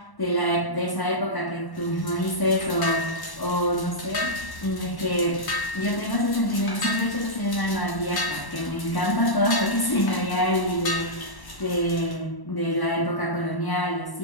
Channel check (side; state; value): right; late; 1.1 ms